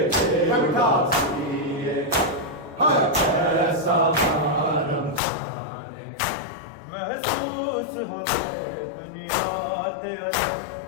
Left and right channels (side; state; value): right; drops out; at 5.2 s